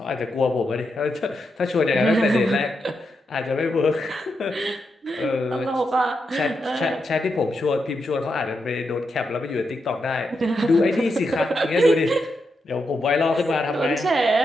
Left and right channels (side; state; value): both; normal; correlation 0.84